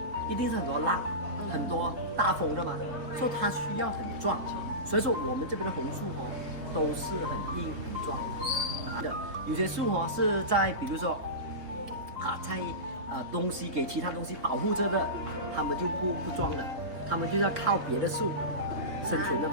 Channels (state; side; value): late; left; 3.8 ms